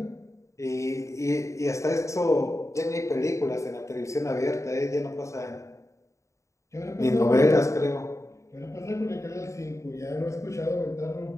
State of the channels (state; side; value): late; right; 0.15 ms